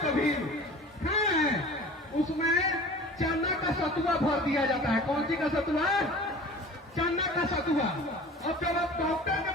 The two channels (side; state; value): both; normal; correlation 0.41